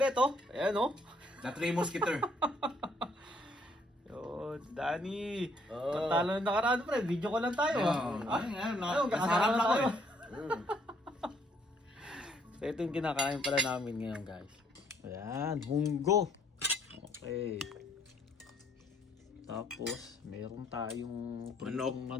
oh. Ayan, oh. The Three Musketeer. Yun, Danny. Oh. Patalo na nakaraan, pre. Video ko lang tayo. Nasarap lang ako eh. So, ito yung kinakain pala namin ngayon, guys. Ayan, munggo. Okay. Tapos, meron tayong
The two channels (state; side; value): normal; both; correlation 0.66